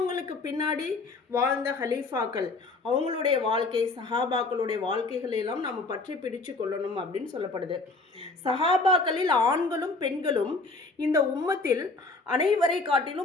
பின்னாடி வாழ்ந்த ஹலீஃபாக்கள் அவங்களுடைய வாழ்க்கை, சஹாபாக்களுடைய வாழ்க்கைகளெல்லாம் நாம் பற்றி பிடிச்சு கொள்ளணும் அப்படின்னு சொல்லப்படுது. சஹாபாக்களில் ஆண்களும் பெண்களும் இந்த உம்மத்தில் அனைவரை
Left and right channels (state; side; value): quieter; right; 3.5 dB